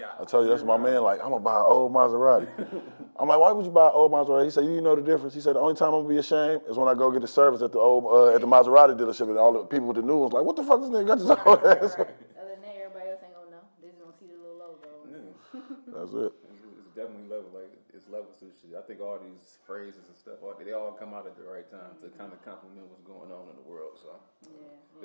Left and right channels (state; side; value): inverted; both; correlation -1.00